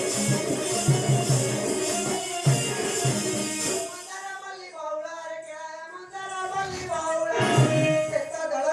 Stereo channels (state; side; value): identical; both; correlation 1.00